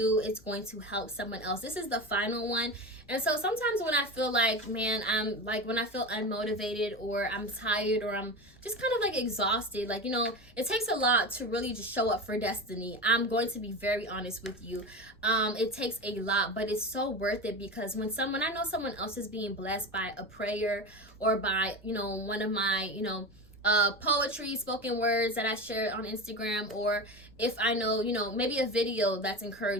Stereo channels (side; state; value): left; noise; rumble, 26 dB below the sound